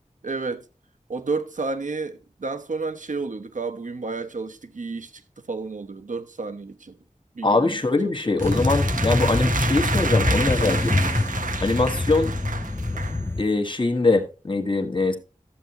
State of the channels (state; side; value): normal; both; correlation 0.72